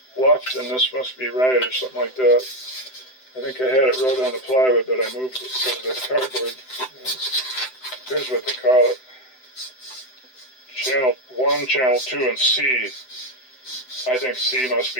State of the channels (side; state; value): right; late; 7.8 ms